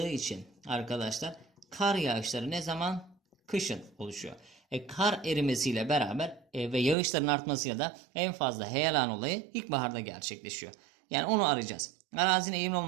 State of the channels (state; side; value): drops out; left; at 7.0 s